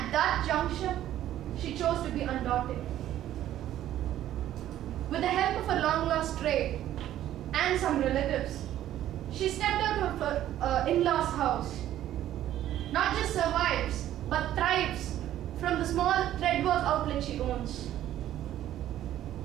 that juncture, she chose to be undaunted. With the help of her long-lost trade and some relatives, she stepped out of her in-laws' house. Not just survives, but thrives from the small threadwork outlet she owns.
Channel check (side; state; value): left; quieter; 12.4 dB